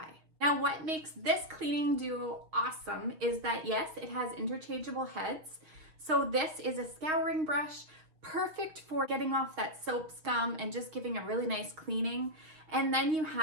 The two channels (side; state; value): left; late; 6.5 ms